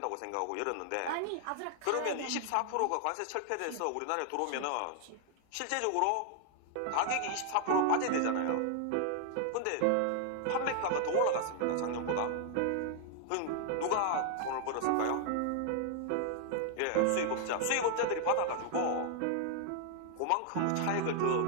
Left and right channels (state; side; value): different; both; correlation 0.00